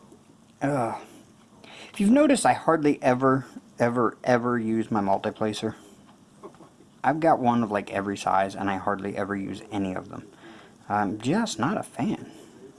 If you've noticed, I hardly ever use my multiplacer. I've got one of like every size, and I hardly ever use any of them. I'm just not a fan.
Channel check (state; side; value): identical; both; correlation 1.00